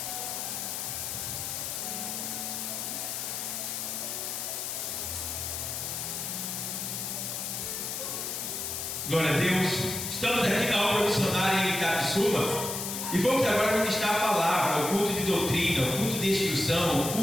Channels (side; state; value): left; noise; hiss, 4 dB below the sound